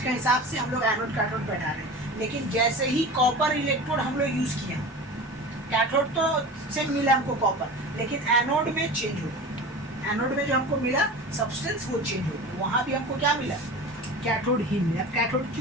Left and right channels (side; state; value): both; normal; correlation 0.34